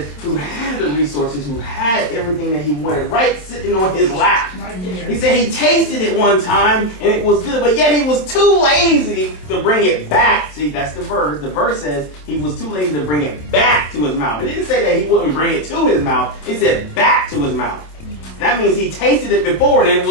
who had the resources, who had everything that he wanted, right sitting on his lap. He said he tasted it one time and it was good, but yet he was too lazy to bring it back. See, that's the verse. The verse says he was too lazy to bring it back to his mouth. It didn't say that he wouldn't bring it to his mouth. It said back to his mouth. That means he tasted it before and it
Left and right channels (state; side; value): late; right; 26 ms